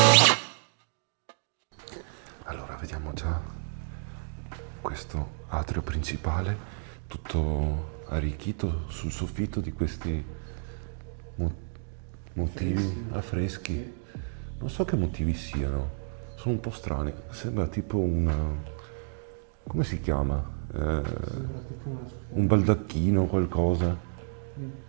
Allora, vediamo già questo atrio principale, tutto arricchito sul soffitto di questi motivi affreschi. Non so che motivi siano, sono un po' strani. Sembra tipo come si chiama? Un baldacchino o qualcosa.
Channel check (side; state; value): left; silent; digital silence